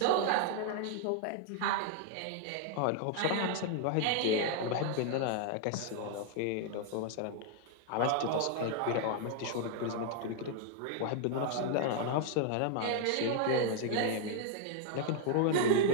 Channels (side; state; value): both; different; correlation 0.00